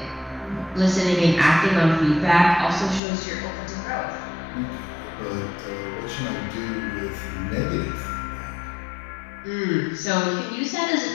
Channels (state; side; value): drops out; right; at 3.0 s